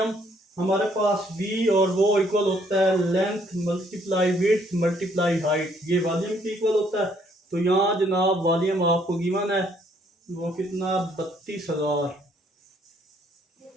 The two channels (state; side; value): normal; both; correlation 0.66